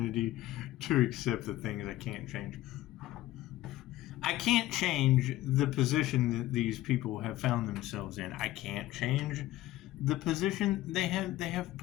to accept the things I can't change. I can't change the position that these people have found themselves in. I can't change the position they have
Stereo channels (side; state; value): right; quieter; 15.5 dB